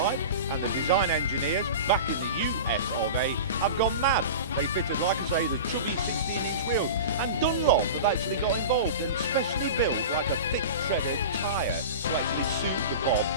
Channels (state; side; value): inverted; both; correlation -0.31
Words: and the design engineers back in the US of A have gone mad. They fitted, like I say, the chubby 16-inch wheels, and Dunlop have actually got involved and specially built like a thick treaded tyre to actually suit the bob